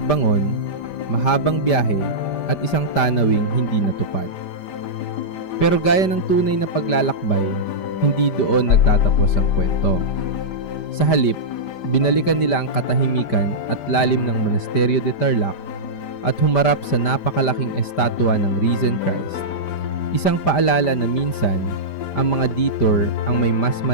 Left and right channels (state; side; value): late; right; 5.1 ms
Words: mahabang biyahe at isang tanawing hindi natupad. Pero gaya ng tunay na paglalakbay, hindi doon nagtatapos ang kwento. Sa halip, binalikan nila ang katahimikan at lalim ng Monasterio de Tarlac at humarap sa napakalaking estatwa ng Risen Christ. Isang paalala na minsan, ang mga detour ang may mas